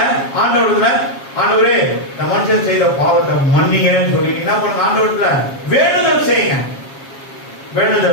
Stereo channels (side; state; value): right; late; 7.4 ms